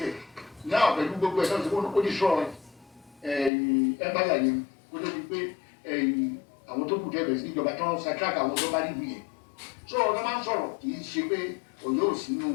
náà pẹ̀lú gbogbo ẹ̀ náà tó kó ní sọ ẹ̀báyà yẹn kó tó di pé àwọn tó kù dẹ́bẹ̀ sí ìjọba tó ń ṣàtúràkà àwọn tó bá rí ìwé yẹn so ọ̀nà máa ń sọ̀rọ̀ kì í ṣe pé Ọ̀yọ́ ò sínú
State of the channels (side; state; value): right; drops out; at 3.5 s